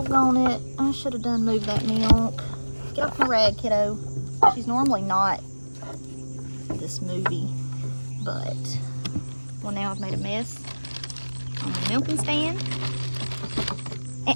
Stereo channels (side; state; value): both; inverted; correlation -1.00